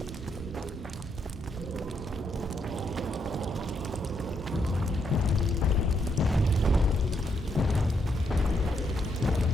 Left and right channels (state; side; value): normal; both; correlation 0.77